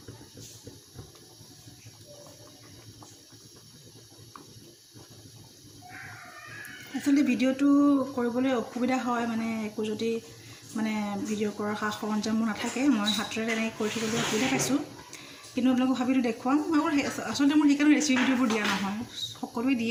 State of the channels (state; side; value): identical; both; correlation 1.00